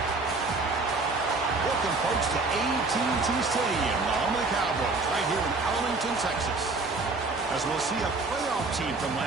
Welcome, folks, to AT&T Stadium, the home of the Cowboys, right here in Arlington, Texas. As we'll see a playoff team from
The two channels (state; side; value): quieter; left; 3.6 dB